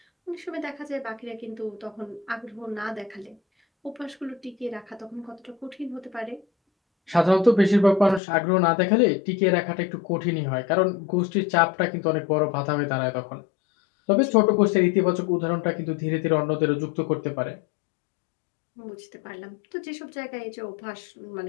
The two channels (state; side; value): drops out; right; at 8.2 s